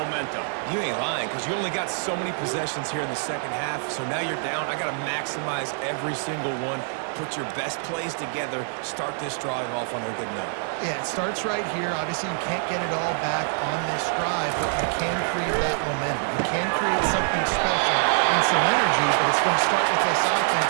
You ain't lying, because you only got so many possessions here in the second half, so now you're down. I got to maximize every single one, put your best plays together, start this drive off on a good note. Yeah, it starts right here. Obviously, you can't get it all back on this drive, but you can create that momentum. You can create something special and some energy, but it's going to start with this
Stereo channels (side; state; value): left; silent; 61 dB below the other